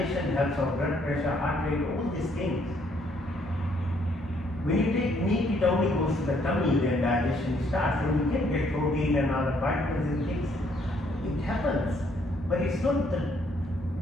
helps our blood pressure, heart rate, all these things. When you take meat, it only goes to the tummy, then digestion starts. And you can get protein and other vitamins and things. It happens. But it's not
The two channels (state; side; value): normal; both; correlation 0.68